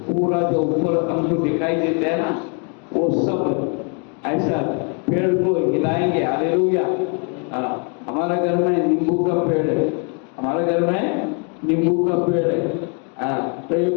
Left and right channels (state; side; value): quieter; right; 38.7 dB